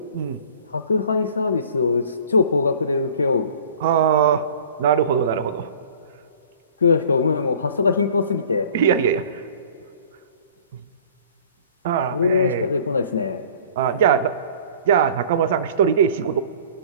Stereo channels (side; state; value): both; inverted; correlation -0.47